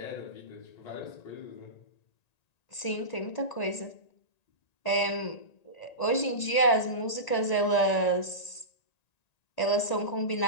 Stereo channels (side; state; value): right; late; 1.9 ms